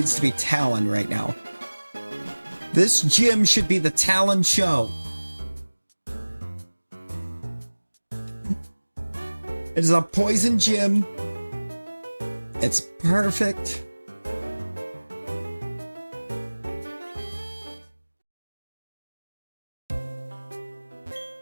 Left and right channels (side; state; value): both; inverted; correlation -1.00